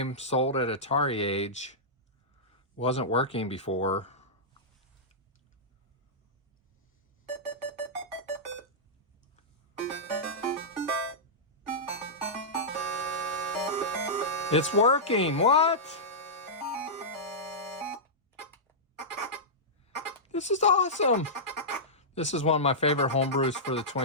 sold at ATARI. Wasn't working before. It's working. What? This is awesome. This is one of my favorite homebrews for the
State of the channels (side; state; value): both; normal; correlation -0.13